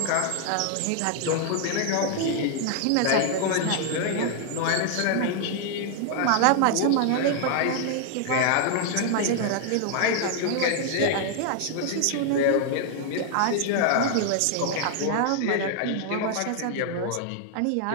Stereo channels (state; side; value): different; both; correlation 0.00